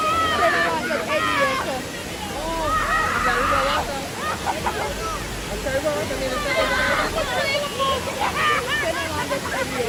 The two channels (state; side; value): identical; both; correlation 1.00